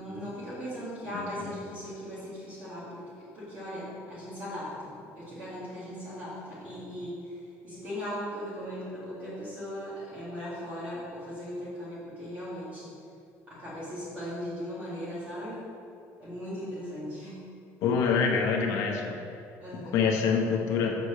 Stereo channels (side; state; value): right; quieter; 3.8 dB